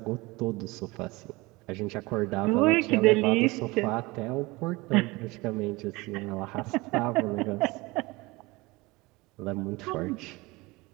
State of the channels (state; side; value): quieter; left; 22.8 dB